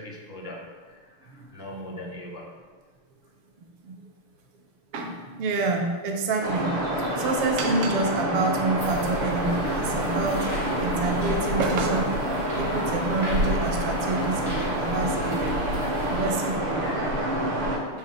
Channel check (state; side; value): late; left; 6.6 ms